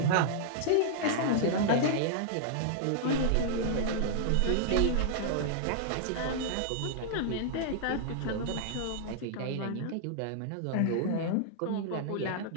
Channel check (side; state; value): both; different; correlation -0.01